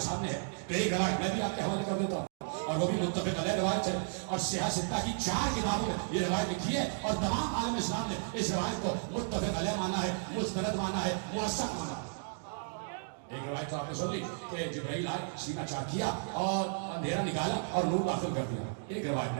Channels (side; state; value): left; silent; digital silence